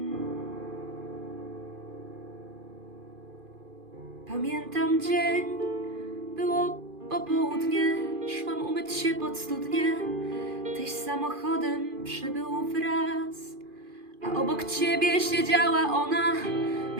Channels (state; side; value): late; left; 2.5 ms